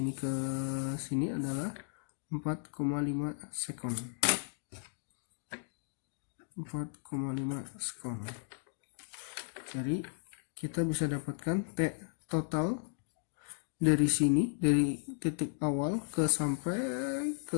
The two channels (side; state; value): right; silent; digital silence